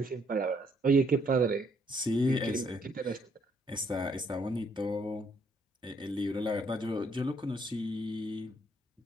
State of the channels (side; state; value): both; normal; correlation 0.69